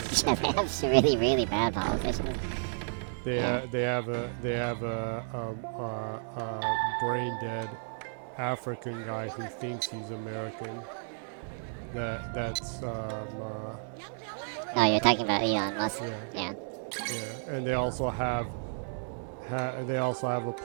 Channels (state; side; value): silent; left; digital silence